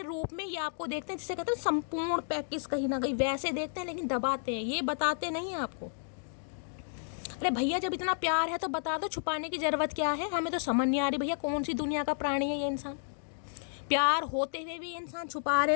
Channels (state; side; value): silent; right; digital silence